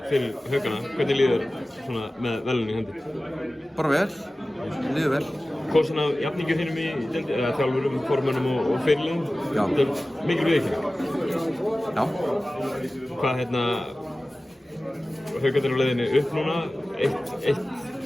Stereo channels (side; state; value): both; normal; correlation 0.96